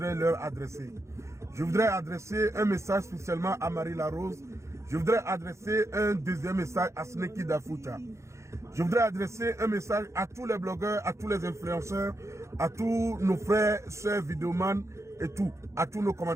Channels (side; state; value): left; late; 0.14 ms